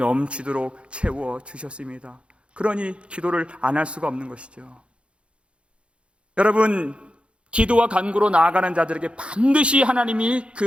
채워주셨습니다. 그러니 기도를 안 할 수가 없는 것이죠. 여러분, 기도와 간구로 나아가는 자들에게 반드시 하나님이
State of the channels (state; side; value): late; left; 0.059 ms